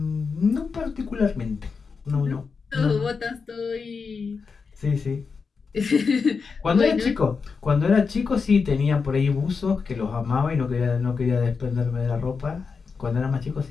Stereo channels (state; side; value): quieter; right; 5.2 dB